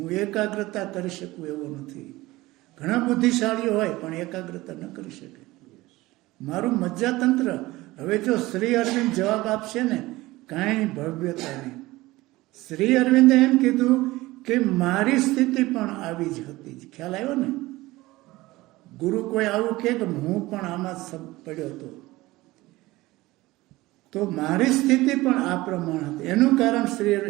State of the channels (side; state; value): left; quieter; 19.2 dB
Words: એકાગ્રતા કરી શકું એવો નથી. ઘણા બુદ્ધિશાળીઓ હોય પણ એકાગ્રતા ન કરી શકે. મારું મજ્જાતંત્ર. હવે જો શ્રી અરવિંદ જવાબ આપશે ને, કાંઈ ભવ્યતા નહીં. શ્રી અરવિંદે એમ કીધું કે મારી સ્થિતિ પણ આવી જ હતી. ખ્યાલ આવ્યો ને? ગુરુ કોઈ આવું કહે કે હું પણ આમાં પડ્યો હતો, તો મારી સ્થિતિ પણ આ પ્રમાણે હતી.